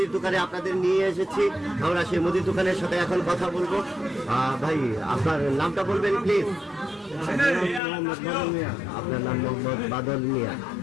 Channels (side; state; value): right; drops out; at 7.8 s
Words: দোকানে আপনাদের নিয়ে এসেছি। আমরা সেই মুদির দোকানের সাথে এখন কথা বলবো। ভাই আপনার নামটা বলবেন প্লিজ? আপনার নাম মোহাম্মদ বাদল মিয়া।